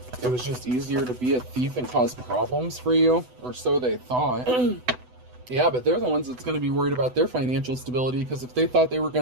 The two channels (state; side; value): late; left; 8.0 ms